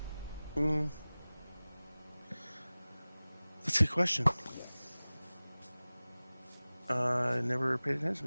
That's a good question. I never paid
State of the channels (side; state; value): both; inverted; correlation -0.98